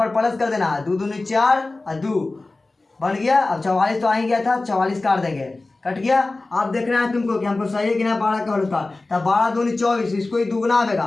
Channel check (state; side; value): quieter; right; 3.2 dB